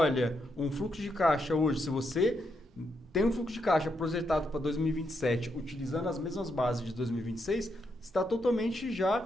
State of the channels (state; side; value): normal; both; correlation 0.80